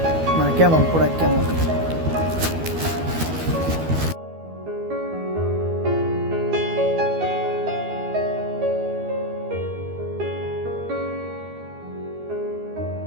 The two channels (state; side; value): late; left; 12 ms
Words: মানে কেমন প্রোডাক্ট কেমন।